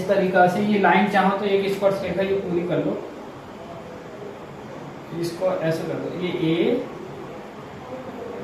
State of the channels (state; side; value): identical; both; correlation 1.00